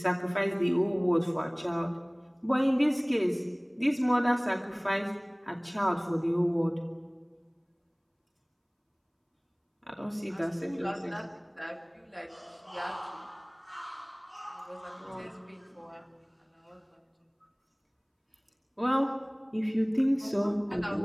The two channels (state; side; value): identical; both; correlation 1.00